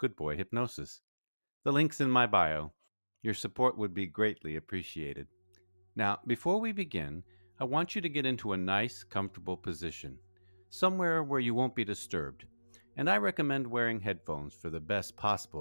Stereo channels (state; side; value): inverted; both; correlation -1.00